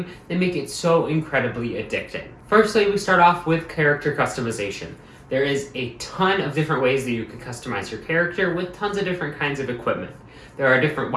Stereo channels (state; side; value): identical; both; correlation 1.00